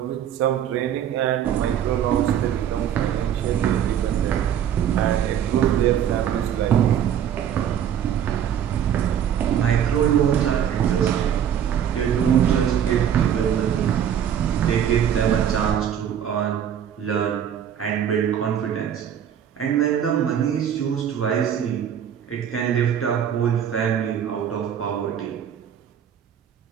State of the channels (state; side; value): quieter; left; 9.3 dB